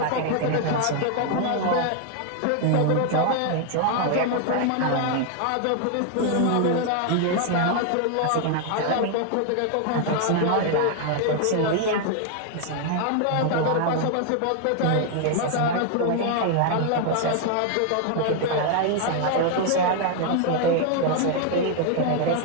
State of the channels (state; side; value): different; both; correlation 0.00